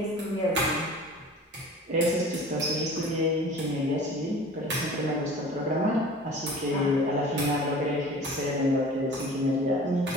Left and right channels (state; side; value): normal; both; correlation 0.42